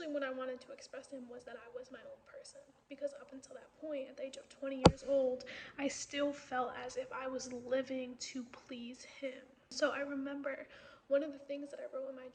what I wanted to express to him was that I was my own person. Because up until that point, at the age of 20 years old, I still felt as if I was living to please him. So I remember one of the things that I wrote in my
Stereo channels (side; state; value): both; identical; correlation 1.00